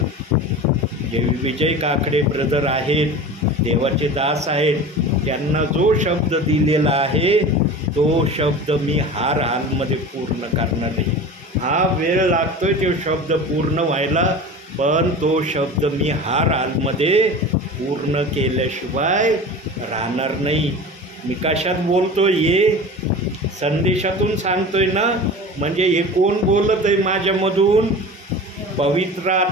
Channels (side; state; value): both; normal; correlation 0.34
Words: जे विजय काकडे ब्रदर आहेत, देवाचे दास आहेत, त्यांना जो शब्द दिलेला आहे तो शब्द मी हर हालमध्ये पूर्ण करणार आहे. हा वेळ लागतोय तो शब्द पूर्ण व्हायला, पण तो शब्द मी हर हालमध्ये पूर्ण केल्याशिवाय राहणार नाही. मी कशात बोलतोय? हे संदेशातून सांगतोय ना. म्हणजे हे कोण बोलत आहे माझ्यामधून? पवित्र